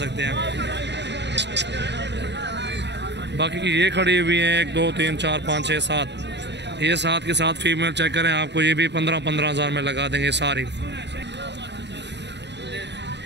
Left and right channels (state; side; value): late; left; 0.51 ms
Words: हैं। बाकी की ये खड़ी हुई हैं 1 2 3 4 5 6 7, ये 7 के 7 फीमेल चेक करें, आपको ये भी 15 हज़ार में लगा देंगे सारी।